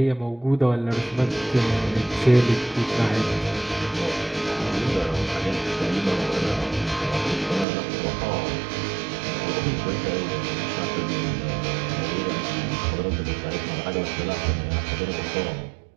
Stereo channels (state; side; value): drops out; left; at 7.7 s